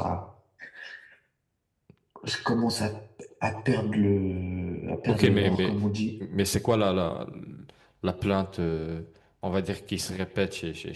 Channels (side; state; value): both; identical; correlation 1.00